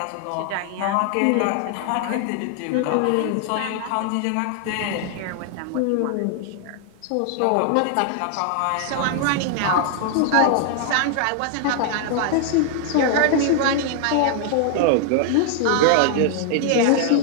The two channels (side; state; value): both; different; correlation 0.00